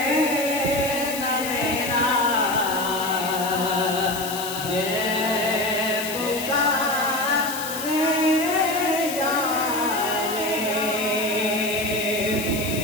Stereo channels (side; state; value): left; noise; hiss, 8 dB below the sound